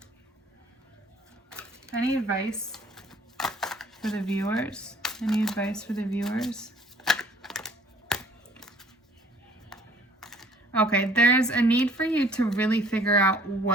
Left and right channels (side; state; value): both; normal; correlation 0.56